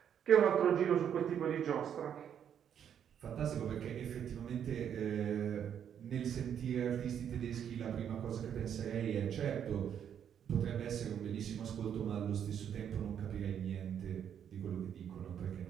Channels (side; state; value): left; quieter; 8.8 dB